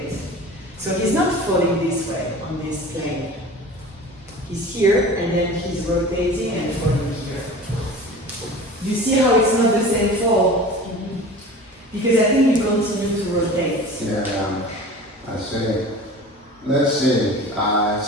So he's not falling this way on this plane. He's here, and then he's rotating and falling here. You see how it's not the same fall? Because I think you continue to rotate. Yeah, I see. Let's see. So I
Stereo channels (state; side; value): normal; both; correlation 0.39